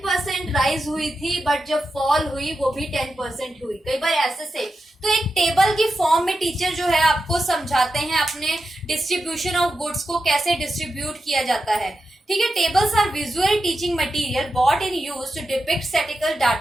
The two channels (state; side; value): normal; both; correlation 0.89